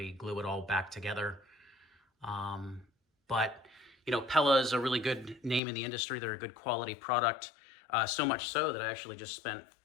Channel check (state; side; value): drops out; right; at 5.6 s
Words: glue it all back together. But, you know, Pella is a really good name in the industry. They're a good quality product, so much so that I actually just spent